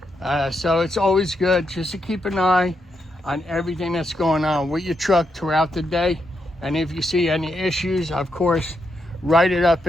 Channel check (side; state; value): both; normal; correlation 0.82